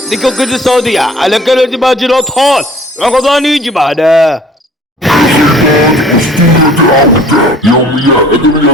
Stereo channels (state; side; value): normal; both; correlation 0.51